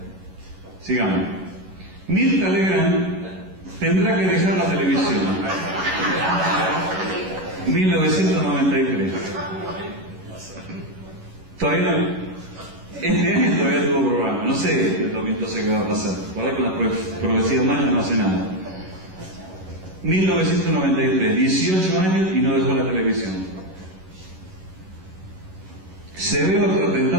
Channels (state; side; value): late; left; 11 ms